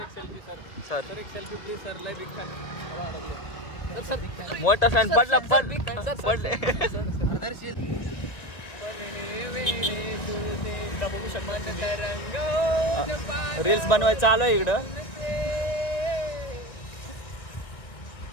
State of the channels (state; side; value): late; right; 2.0 ms